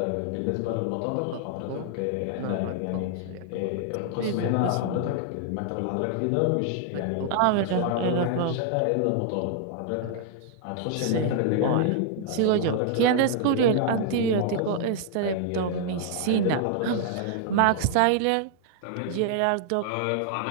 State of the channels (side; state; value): both; different; correlation 0.00